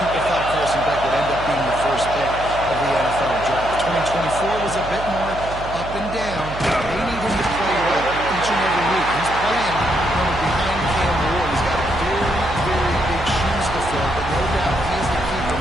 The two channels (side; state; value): right; noise; hum, 10 dB below the sound